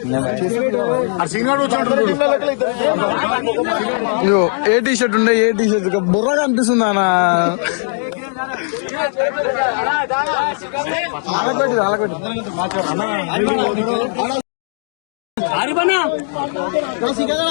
ఏ టీ షర్ట్ ఉండే? ఏ టీ షర్ట్ బుర్రగా అనిపిస్తుంది అన్న.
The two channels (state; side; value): silent; right; 59 dB below the other